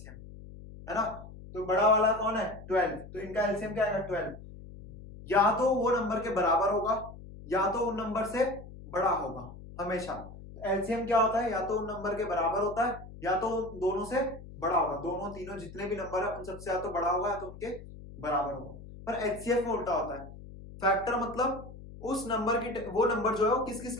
है ना। तो बड़ा वाला कौन है, 12, तो इनका एलसीएम क्या आएगा 12, या तो वो नंबर के बराबर होगा या तो उन नंबर से बड़ा होगा हमेशा। एलसीएम क्या होता है, या तो उन नंबर के बराबर होता है या तो दोनों से बड़ा होगा, दोनों तीनों जितने भी नंबर है उन सबसे या तो बड़ा होगा या तो उनके बराबर होगा। पर एचसीएफ में उल्टा होता है, फैक्टर मतलब उस नंबर की, वो नंबर जो है वो किस किस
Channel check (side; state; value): left; noise; hum, 15 dB below the sound